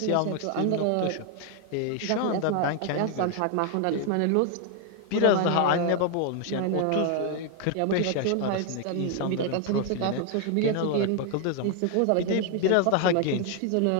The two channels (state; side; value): different; both; correlation 0.00